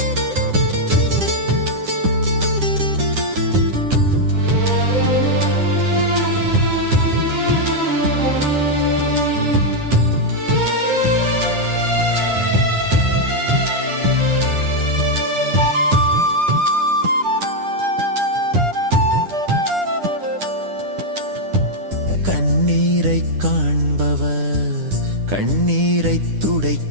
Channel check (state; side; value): late; left; 9.9 ms